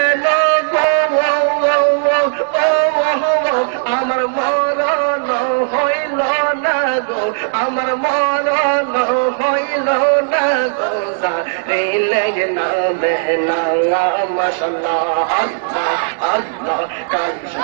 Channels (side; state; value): left; silent; 64 dB below the other